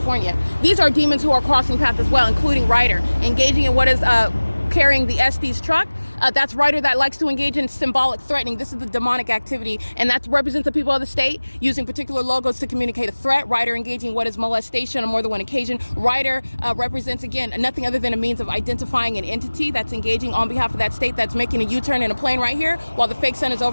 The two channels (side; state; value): both; inverted; correlation -1.00